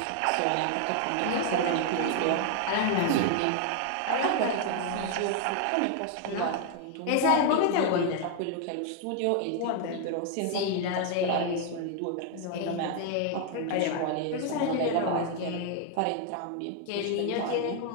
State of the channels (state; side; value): different; both; correlation 0.00